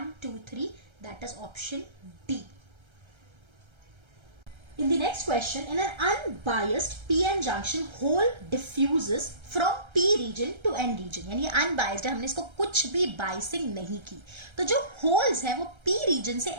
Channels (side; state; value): left; late; 1.3 ms